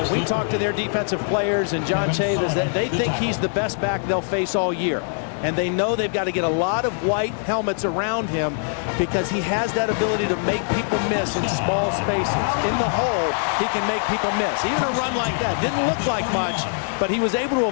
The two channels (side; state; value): right; silent; 64 dB below the other